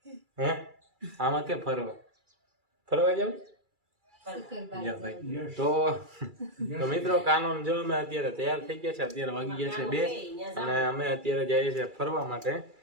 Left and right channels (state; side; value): late; left; 2.3 ms